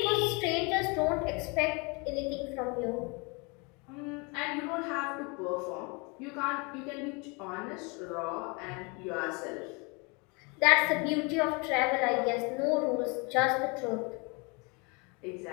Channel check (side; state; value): right; quieter; 30.3 dB